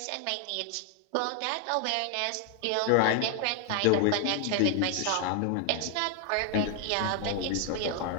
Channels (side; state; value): both; different; correlation 0.00